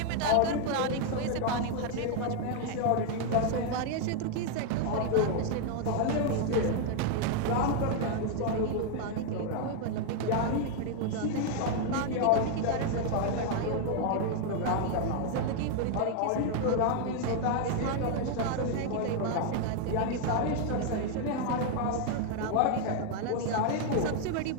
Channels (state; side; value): different; both; correlation 0.00